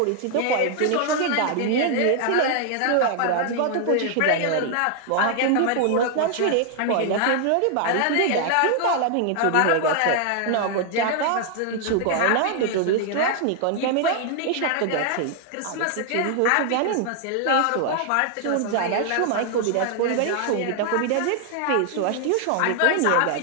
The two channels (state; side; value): different; both; correlation 0.00